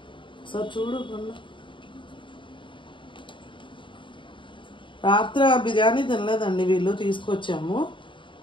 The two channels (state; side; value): late; right; 0.24 ms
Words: సార్ చూడు కొన్న రాత్రి ఆ బిర్యానీ తినలేదండి, వీళ్ళు తీసుకొచ్చాము.